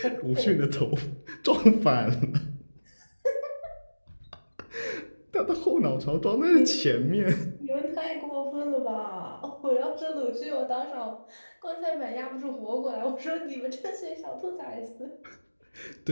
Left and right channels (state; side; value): inverted; both; correlation -1.00